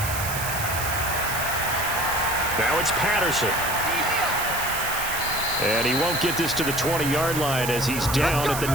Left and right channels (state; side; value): noise; right; hiss, 5 dB below the sound